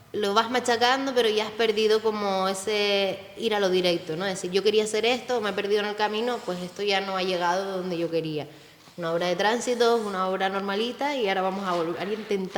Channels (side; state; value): both; identical; correlation 1.00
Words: lo vas machacando, pero ya has perdido como ese ir a lo directo, ¿no? Es decir, yo quería hacer esto, me he perdido en el camino, pues esto ya no ha llegado donde yo quería. Una obra de tránsito, una obra normalita y ahora vamos a volver a